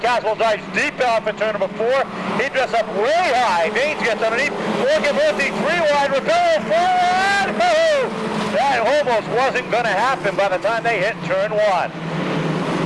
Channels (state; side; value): identical; both; correlation 1.00